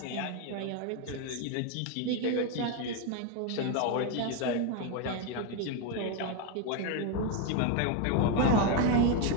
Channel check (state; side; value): different; both; correlation 0.01